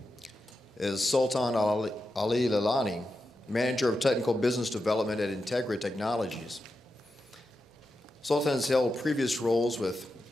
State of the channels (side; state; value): both; normal; correlation 0.89